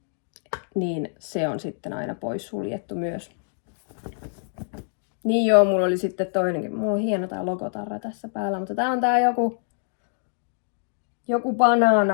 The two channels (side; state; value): right; silent; digital silence